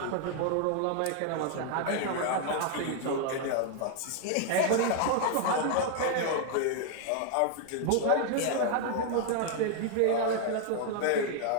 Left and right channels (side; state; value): both; different; correlation 0.00